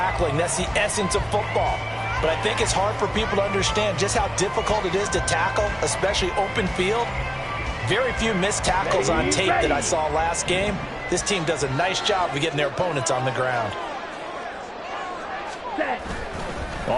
That's the essence of football. But I think it's hard for people to understand just how difficult it is to tackle, especially open field. Very few missed tackles on tape that I saw last game. This team does a nice job of getting their opponents on the ground.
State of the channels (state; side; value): identical; both; correlation 1.00